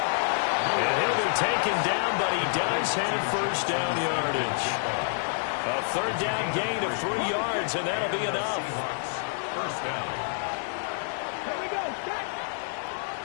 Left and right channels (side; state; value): right; silent; 59 dB below the other